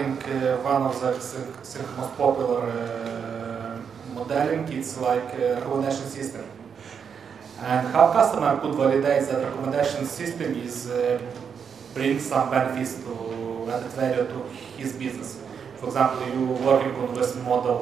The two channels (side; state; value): left; quieter; 6.9 dB